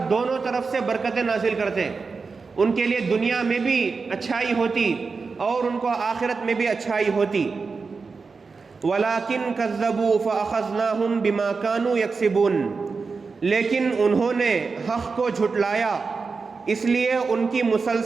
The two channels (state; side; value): quieter; left; 4.6 dB